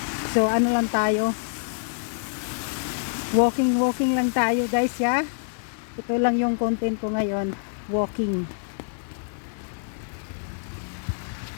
So lang tayo, walking lang tayo guys ya. Ito lang yung content ko ngayon, walking.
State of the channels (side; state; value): right; silent; digital silence